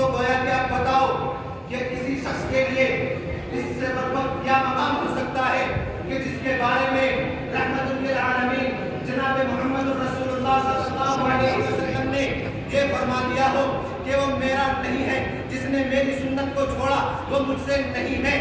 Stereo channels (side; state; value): both; identical; correlation 1.00